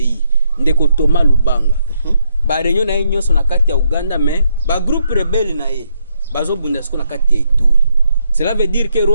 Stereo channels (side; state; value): both; inverted; correlation -0.76